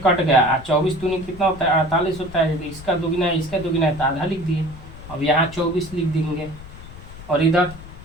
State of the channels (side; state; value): left; noise; rumble, 15 dB below the sound